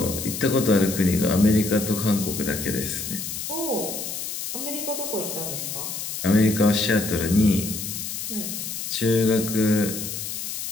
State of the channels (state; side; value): noise; left; hiss, 6 dB below the sound